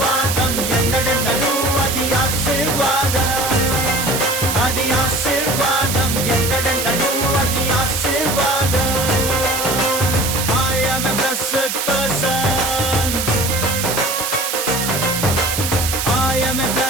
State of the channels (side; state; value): right; noise; hiss, 2 dB below the sound